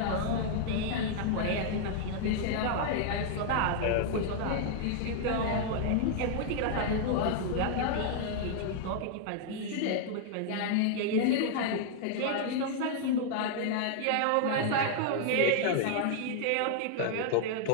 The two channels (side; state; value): both; different; correlation -0.01